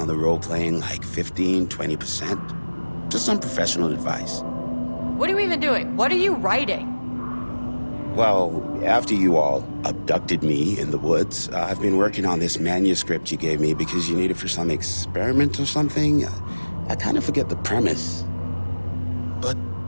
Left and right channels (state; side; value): inverted; both; correlation -1.00